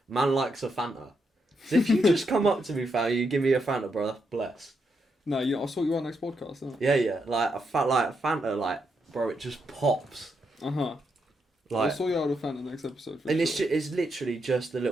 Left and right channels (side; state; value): both; normal; correlation 0.81